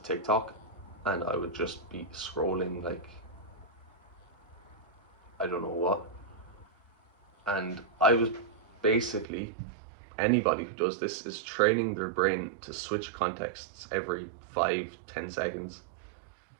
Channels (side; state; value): left; drops out; at 9.2 s